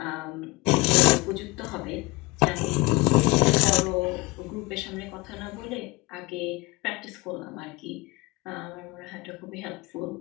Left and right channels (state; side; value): quieter; right; 23.7 dB